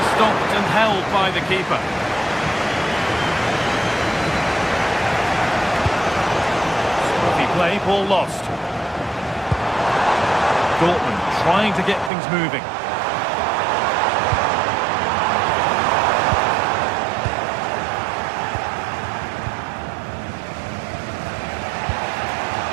stopped and held by the keeper. Scruffy play, ball lost. Dortmund trying to get things moving.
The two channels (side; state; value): left; drops out; at 12.1 s